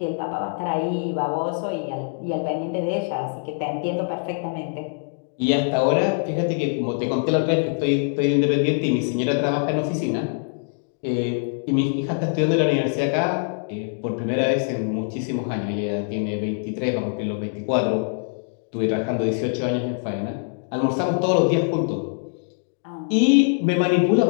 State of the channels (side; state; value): right; silent; 63 dB below the other